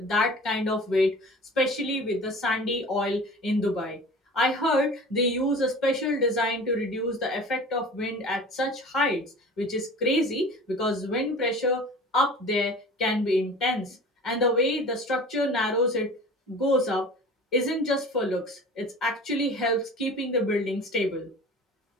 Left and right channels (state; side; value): normal; both; correlation 0.40